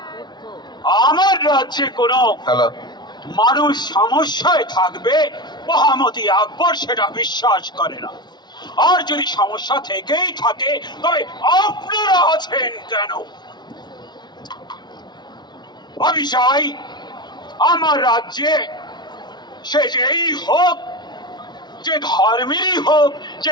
আমার রাজ্যে কোনো হ্যালো মানুষ সমস্যায় থাকবে মহামতি আকবর সেটা বিশ্বাস করে না। আর যদি সমস্যা থেকেই থাকে তবে আপনারা আছেন কেন? আমি চাই আমার রাজ্যে সে যেই হোক, যে ধর্মেরই হোক,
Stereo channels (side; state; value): right; late; 0.20 ms